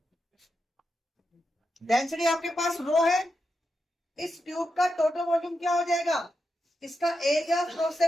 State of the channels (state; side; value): normal; both; correlation 0.87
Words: डेंसिटी आपके पास रो है, इस ट्यूब का टोटल वॉल्यूम क्या हो जाएगा? इसका एरिया क्रॉस